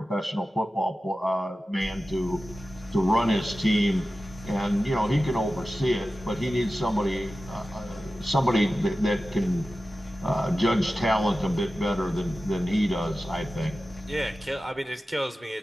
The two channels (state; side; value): normal; both; correlation 0.94